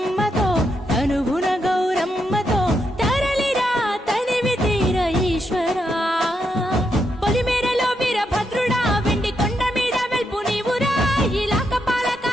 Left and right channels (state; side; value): normal; both; correlation 0.81